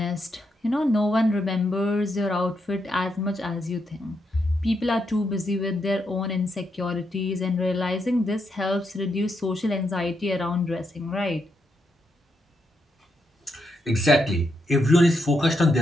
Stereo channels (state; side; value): normal; both; correlation 0.81